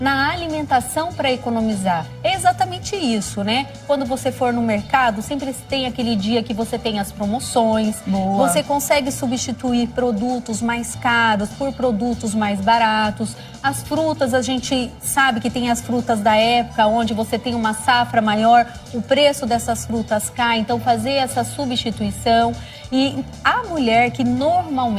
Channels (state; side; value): identical; both; correlation 1.00